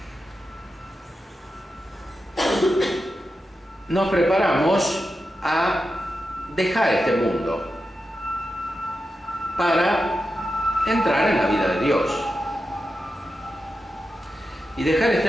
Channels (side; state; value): both; normal; correlation 0.90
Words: nos preparamos a dejar este mundo para entrar en la vida de Dios. Y dejar